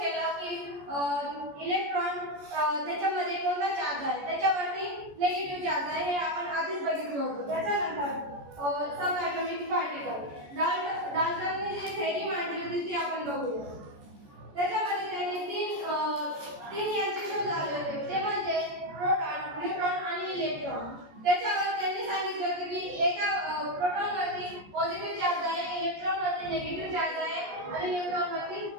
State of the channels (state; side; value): late; left; 14 ms